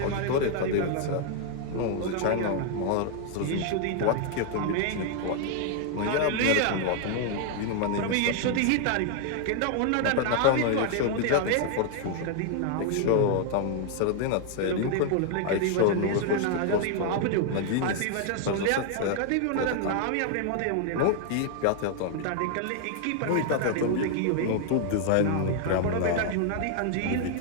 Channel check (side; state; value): both; different; correlation 0.00